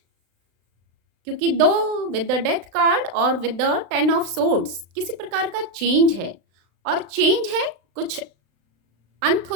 क्योंकि 2 विद द डेथ कार्ड और विद द 10 ऑफ सोर्ड्स किसी प्रकार का चेंज है। और चेंज है, कुछ अंत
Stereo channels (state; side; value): late; left; 35 ms